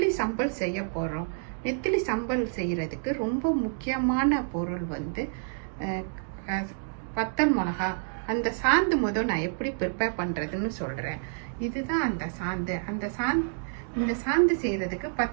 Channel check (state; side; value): silent; left; digital silence